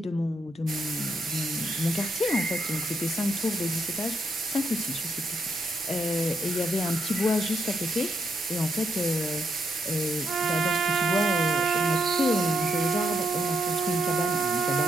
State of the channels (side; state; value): both; normal; correlation 0.79